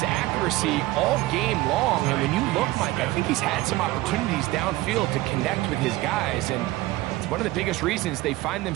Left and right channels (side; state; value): left; quieter; 18.4 dB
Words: accuracy all game long, and when you look, Mike, I think he's had some opportunities downfield to connect with his guys, and it's one of the biggest reasons they find